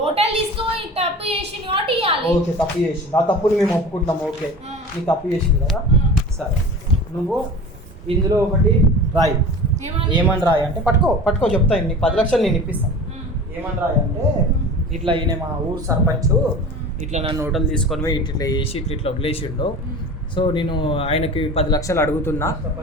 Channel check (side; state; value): both; normal; correlation 0.36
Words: తీసుకుపోయి తప్పు చేసింది కాబట్టి ఇవ్వాలి. ఓకే, తప్పు చేసింది, ఆ తప్పుని మేము ఒప్పుకుంటాం. ఓకే, నీకు తప్పు చేసింది కదా, సరే. నువ్వు ఇందులో ఒకటి రాయి. ఏమని రాయి అంటే పట్టుకో చెప్తాను. నీకు 10 లక్షలు నేను ఇప్పిస్తాను. ఏమని రాయి అంటే ఇట్లా ఈయన మా ఊరు సర్పంచ్ ఇట్లా నన్ను హోటల్ తీసుకొని పోయి ఇట్లా వేసి ఇట్లా వదిలేసిండు. సో నేను ఆయనకి 10 లక్షలు అడుగుతున్నా,